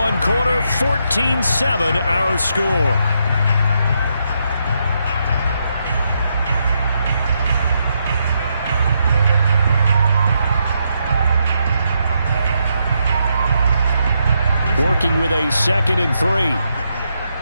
quarter, 14-7 our score. Working with a second and 3.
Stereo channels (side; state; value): both; inverted; correlation -0.80